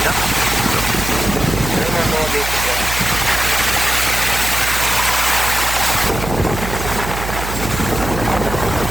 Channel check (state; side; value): noise; right; hum, 7 dB below the sound